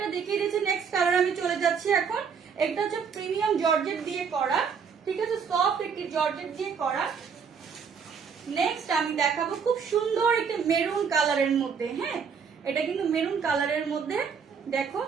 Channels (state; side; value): quieter; left; 6.3 dB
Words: দেখিয়ে দিয়েছি। নেক্সট কালার আমি চলে যাচ্ছি এখন। এটা হচ্ছে প্রিমিয়াম জর্জেট দিয়ে করা। ঠিক আছে, সফট একটি জর্জেট দিয়ে করা। নেক্সট আমি দেখাবো খুব সুন্দর একটা মেরুন কালারের মধ্যে। হ্যাঁ, এটা কিন্তু মেরুন কালারের মধ্যে। দেখো